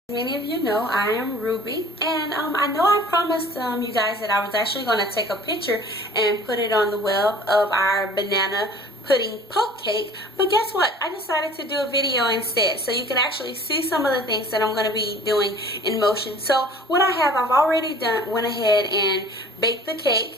Many of you know I am Ruby, and I know I promised you guys that I was actually going to take a picture and put it on the web of our banana pudding poke cake, but guess what? I decided to do a video instead so you can actually see some of the things that I'm going to be doing in motion. So what I've already went ahead and baked the cake.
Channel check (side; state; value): both; normal; correlation 0.48